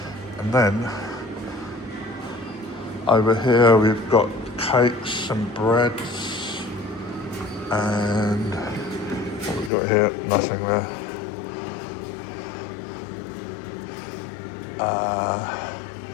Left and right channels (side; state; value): right; drops out; at 9.7 s